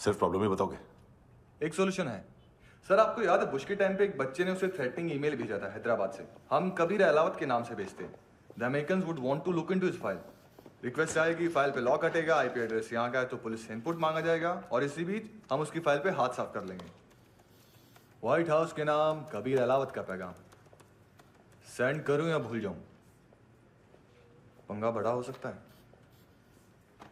प्रॉब्लम ही बताओगे? एक सॉल्यूशन है सर। आपको याद है बुश के टाइम पे एक बच्चे ने उसे थ्रेटनिंग ईमेल भेजा था हैदराबाद से। हम कबीर अलावत के नाम से भेजते हैं। The Americans would want to look into his file. Request आएगी, फाइल पे लॉक हटेगा, आईपी एड्रेस यहाँ का है तो पुलिस से इनपुट मांगा जाएगा और इसी बीच हम उसकी फाइल पे हाथ साफ कर लेंगे। व्हाइट हाउस के नाम कबीर अलावत का पैगाम। सेंड करूं या भूल जाऊं? पंगा बड़ा हो सकता है।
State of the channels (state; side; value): identical; both; correlation 1.00